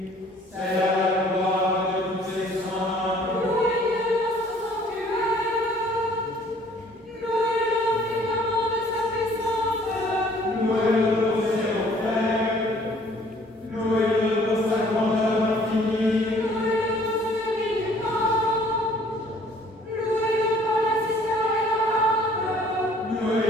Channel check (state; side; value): normal; both; correlation 0.57